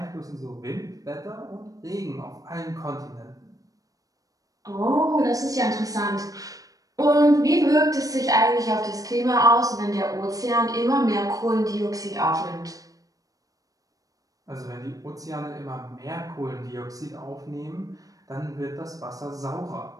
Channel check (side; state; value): left; late; 0.17 ms